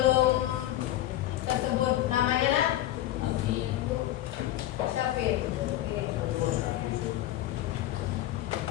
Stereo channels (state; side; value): quieter; right; 14.0 dB